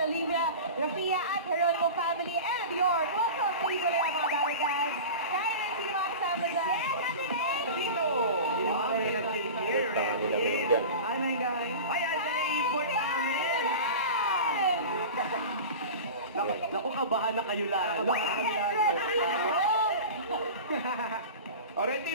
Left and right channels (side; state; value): both; inverted; correlation -0.32